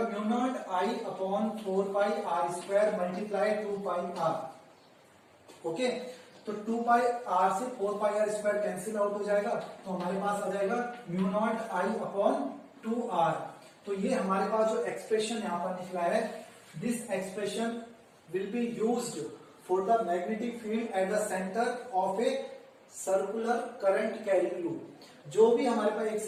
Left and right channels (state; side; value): identical; both; correlation 1.00